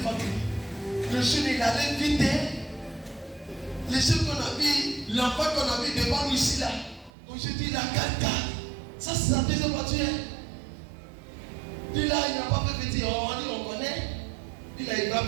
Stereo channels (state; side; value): drops out; left; at 7.1 s